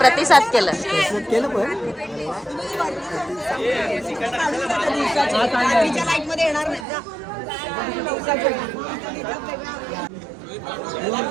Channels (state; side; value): drops out; left; at 6.9 s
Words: प्रतिसाद केलं. केलं पण